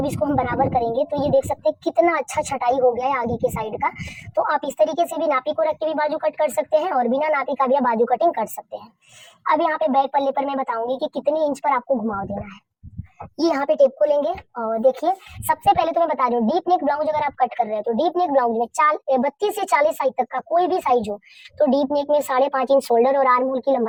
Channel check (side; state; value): both; identical; correlation 1.00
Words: इसको हम बराबर करेंगे तो ये देख सकते हैं कितना अच्छा छटाई हो गया है आगे के साइड का। तो आप इस तरीके से भी नापी को रख के भी बाजू कट कर सकते हैं और बिना नापी का भी आप बाजू कटिंग कर सकते हैं। अब यहाँ पे बैक पल्ले पर मैं बताऊंगी कि कितने इंच पर आपको घुमाव देना है। ये यहाँ पे टेप को लेंगे और देखिए सबसे पहले तो मैं बता रही हूँ डीप नेक ब्लाउज अगर आप कट कर रहे हैं तो डीप नेक ब्लाउज में 32 से 40 साइज तक का कोई भी साइज हो तो डीप नेक में 5.5 इंच शोल्डर और आर्म होल की